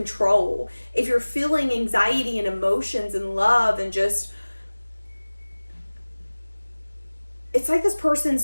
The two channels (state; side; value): inverted; both; correlation -1.00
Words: If you're feeling anxiety and emotions and love and just... It's like this person's